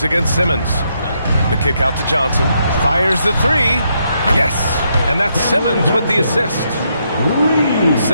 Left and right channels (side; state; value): both; inverted; correlation -0.77